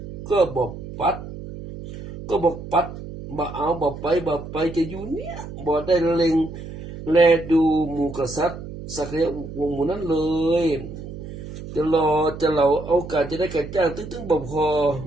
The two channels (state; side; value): noise; right; hum, 11 dB below the sound